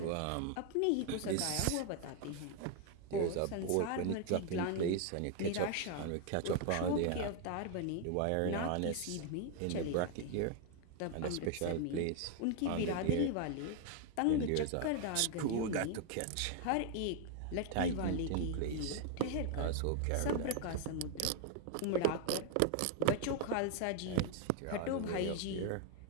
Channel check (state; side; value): different; both; correlation 0.00